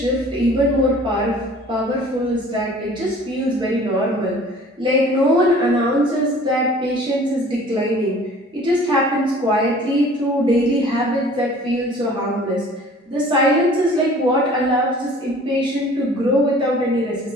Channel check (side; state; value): both; normal; correlation 0.49